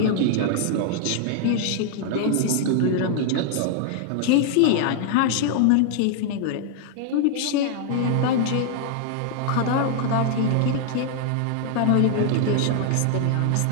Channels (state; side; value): different; both; correlation -0.01